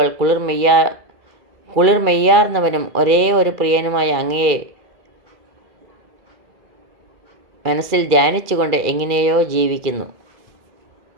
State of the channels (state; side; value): late; left; 2.3 ms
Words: കുളിർമെയ്യാർന്നവനും ഒരേ ഒരു പ്രിയനുമായ അങ്ങയെ മനസ്സിൽ ധ്യാനിച്ചുകൊണ്ട് എങ്ങനെയോ ജീവിക്കുന്നു.